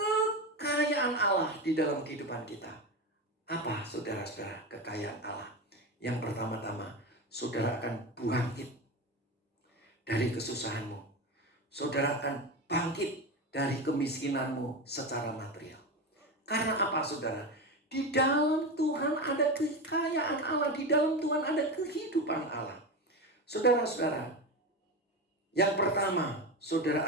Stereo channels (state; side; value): normal; both; correlation 0.20